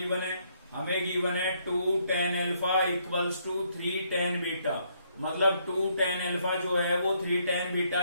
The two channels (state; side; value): inverted; both; correlation -0.71